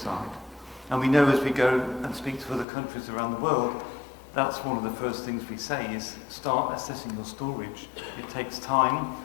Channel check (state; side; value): drops out; right; at 2.7 s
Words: And we know as we go and speak to other countries around the world, that's one of the first things we say is start assessing your storage. It takes time.